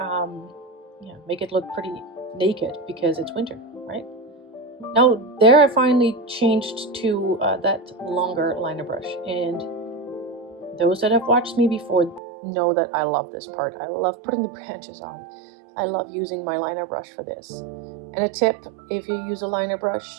make it look pretty naked because it's winter, right? Now, there I finally changed to that longer liner brush. And those that have watched me before know that I love this part. I love putting the branches on. I love using my liner brush for this. And a tip, if you use a liner brush,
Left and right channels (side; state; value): left; drops out; at 12.2 s